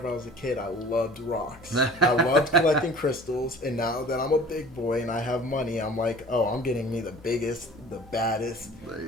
I was a kid, I loved rocks. I loved collecting crystals, and now that I'm a big boy and I have money, I'm like, oh, I'm getting me the biggest, the baddest,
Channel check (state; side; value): normal; both; correlation 0.45